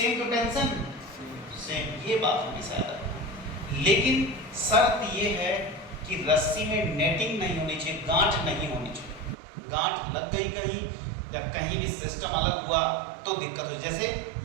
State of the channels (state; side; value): drops out; left; at 9.3 s